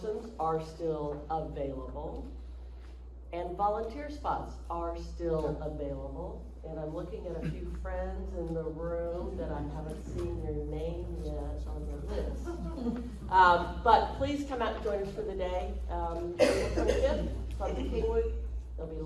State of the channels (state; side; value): identical; both; correlation 1.00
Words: are still available, and volunteer spots are still available. And I'm looking at a few friends in the room that I haven't seen your name yet on the list. But please come out and join us for the day. April 25th from Kingwood. There'll be